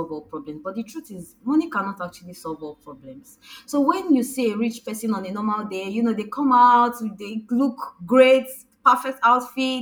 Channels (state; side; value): identical; both; correlation 1.00